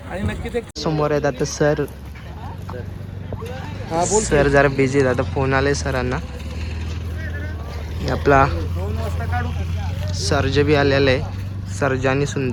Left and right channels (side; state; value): both; identical; correlation 1.00